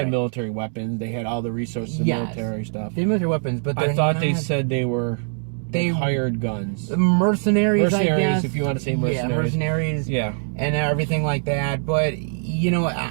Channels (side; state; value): left; silent; 64 dB below the other